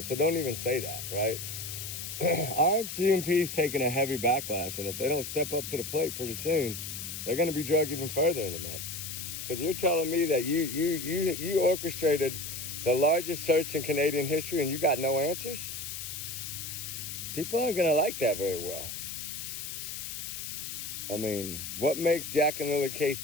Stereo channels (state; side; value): noise; left; hiss, 7 dB below the sound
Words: so don't even say that, right? RCMP's taking a heavy backlash, and if they don't step up to the plate pretty soon, they're going to be dragged even further in the mud. Because you're telling me that you orchestrated the largest search in Canadian history and you got no answers? People aren't going to like that very well. I mean, what makes Jack and Lily case